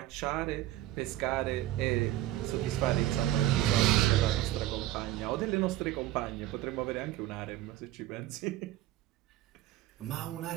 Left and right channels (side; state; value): left; quieter; 14.6 dB